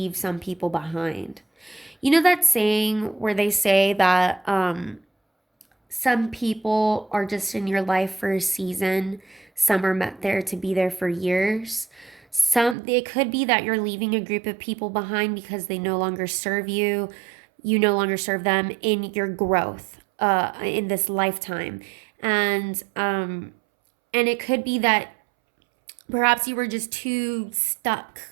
some people behind. You know that saying where they say that some people are just in your life for a season, some are meant there to be there for years. It could be that you're leaving a group of people behind because they no longer serve you. You no longer serve them in your growth in this lifetime. And it could be that perhaps you were just too stuck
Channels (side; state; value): left; drops out; at 12.8 s